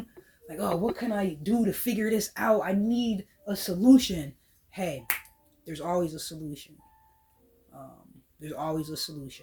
Like, oh, what can I do to figure this out? I need a solution. Hey, there's always a solution. There's always a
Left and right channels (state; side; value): identical; both; correlation 1.00